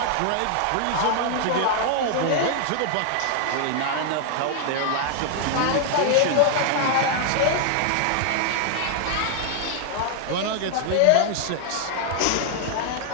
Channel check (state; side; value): different; both; correlation 0.00